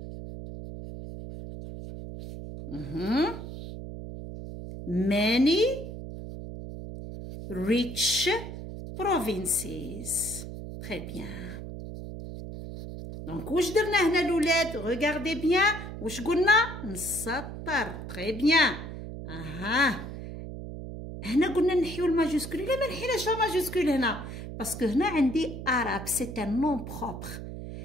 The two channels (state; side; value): noise; right; hum, 9 dB below the sound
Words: many rich provinces. très bien. دونك واش درنا هنا الولاد؟ regardez bien. واش قلنا؟ نسطر. très bien. هنا قلنا نحيو الماجوسكول. لا ما نحيناش الماجوسكول هنا، باسكو هنا عندي Arabe سي ان نون بروبر.